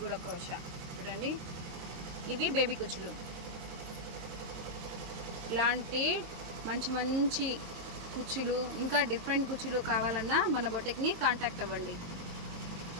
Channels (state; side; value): late; left; 22 ms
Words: కూడా క్రోషా చూడండి. ఇవి బేబీ కుచ్చులు. ఇలాంటి మంచి కుచ్చులు, ఇంకా డిఫరెంట్ కుచ్చులు కావాలన్నా మన బొటిక్ని కాంటాక్ట్ అవ్వండి.